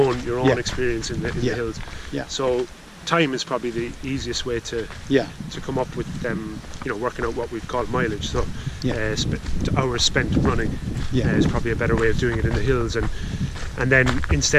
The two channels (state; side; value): identical; both; correlation 1.00